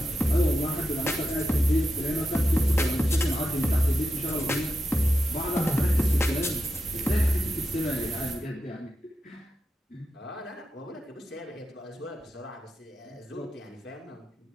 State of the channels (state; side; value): normal; both; correlation 0.88